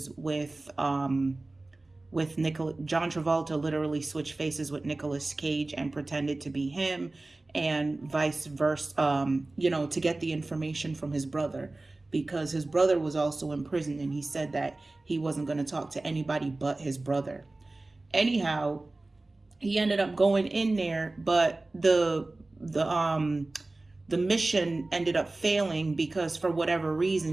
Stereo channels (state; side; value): quieter; left; 3.0 dB